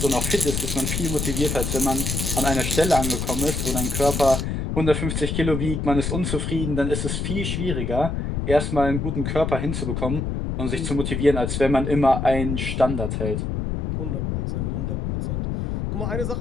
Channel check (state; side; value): noise; left; rumble, 2 dB below the sound